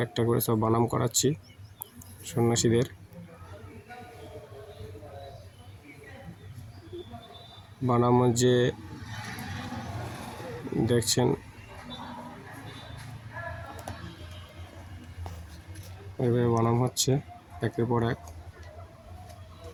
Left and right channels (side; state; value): both; identical; correlation 1.00